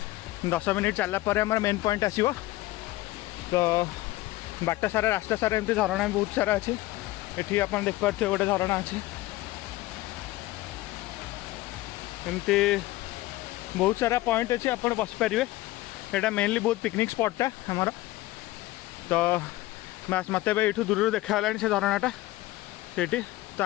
10 मिनिट चलला पर हमर मेन पॉइंट आसीबो तो बाट सारा रास्ता सारा एमती झरणा बहुत सारा अच्छी एठी अपन देख पार्थे गोटे झरणा अच्छी एमती बहुत सारा पॉइंट अच्छी अपन बस पारे एटा मेनली बहुत पिकनिक स्पॉटा हमार तो बस मत ये दूर देखा से झरणाटा से तो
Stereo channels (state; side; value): quieter; right; 17.9 dB